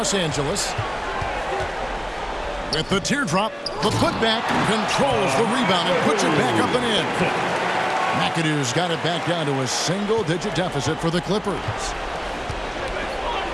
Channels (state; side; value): identical; both; correlation 1.00